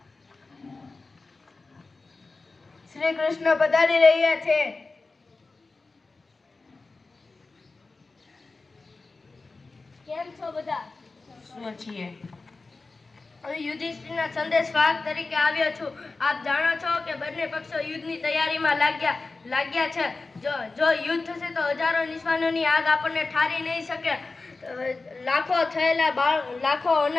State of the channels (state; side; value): quieter; right; 3.7 dB